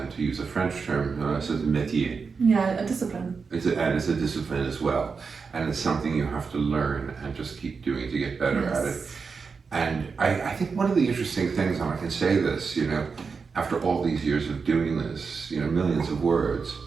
to use a French term, it's a métier. Yeah, a discipline. It's a discipline as well, and it's something you have to learn and just keep doing to get better at it. And I think one of the interesting things, and I can say this, after all these years of doing this, millions of words,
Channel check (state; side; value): quieter; left; 5.2 dB